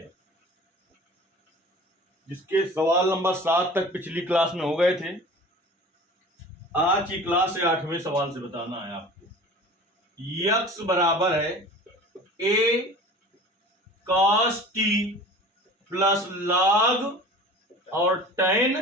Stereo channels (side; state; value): both; normal; correlation 0.41